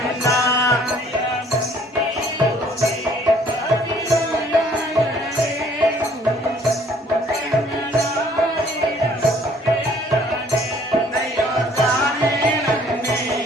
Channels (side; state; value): both; normal; correlation 0.58